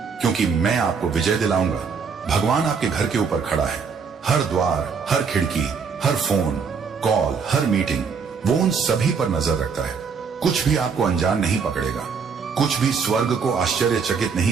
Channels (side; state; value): left; quieter; 5.8 dB